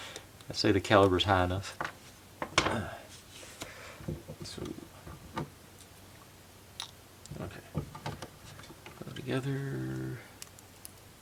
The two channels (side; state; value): both; identical; correlation 1.00